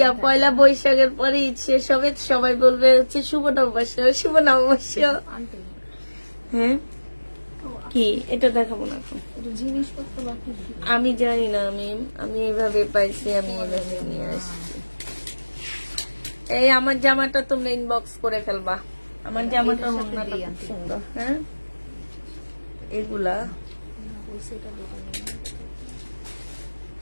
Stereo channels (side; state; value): both; inverted; correlation -1.00